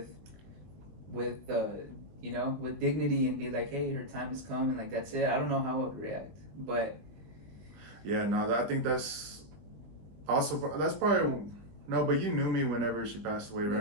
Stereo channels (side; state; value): left; late; 20 ms